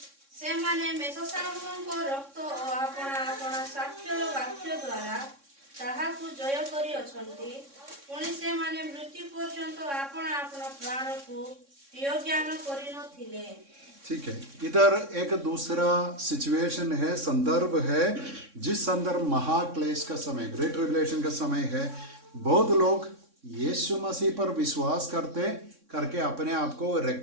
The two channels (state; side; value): late; left; 3.6 ms